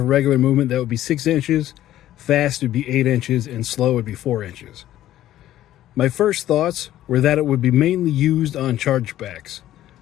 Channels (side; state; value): right; quieter; 13.2 dB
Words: regular movement, that would be 6 inches, fast would be 8 inches, and slow would be 4 inches. My first thoughts were that it would be mainly used on chargebacks.